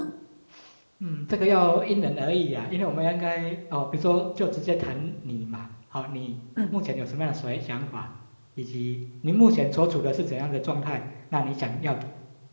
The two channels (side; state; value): both; inverted; correlation -1.00